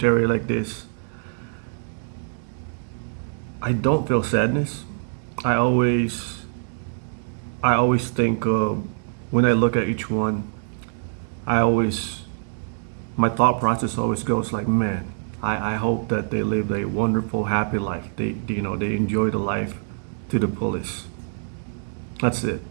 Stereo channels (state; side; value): silent; left; digital silence